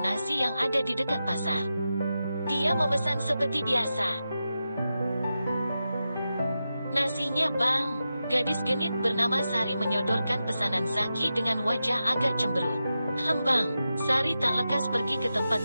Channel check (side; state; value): both; inverted; correlation -0.90